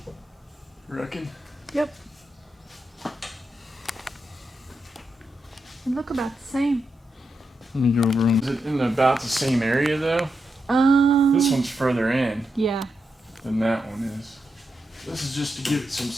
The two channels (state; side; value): normal; both; correlation 0.86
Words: Reckon? Yep. They look about the same. Let me go over them. Is it in about the same area though? This one's further in. Yeah. Than that one is. This is just to give it some